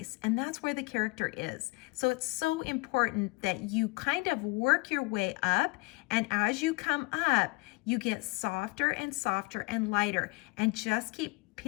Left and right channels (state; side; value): quieter; right; 26.7 dB